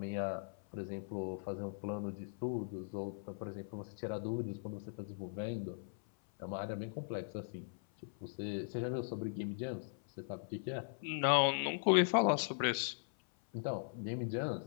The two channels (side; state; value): right; silent; 52 dB below the other